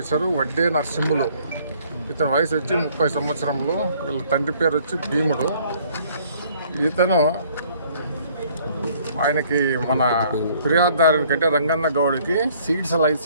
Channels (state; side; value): inverted; both; correlation -0.60